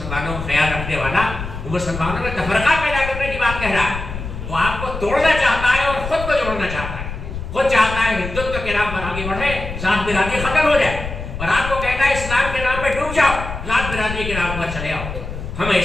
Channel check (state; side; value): noise; left; rumble, 8 dB below the sound